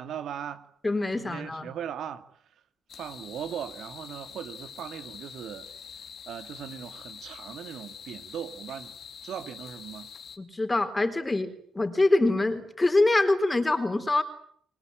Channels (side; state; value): both; normal; correlation 0.94